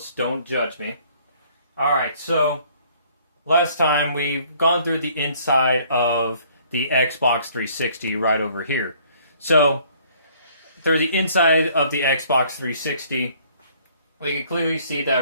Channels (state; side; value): inverted; both; correlation -0.59